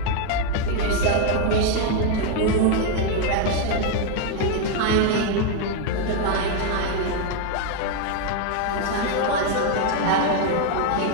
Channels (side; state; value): both; different; correlation 0.01